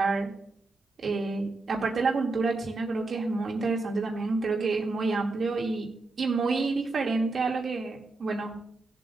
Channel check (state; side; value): quieter; left; 3.4 dB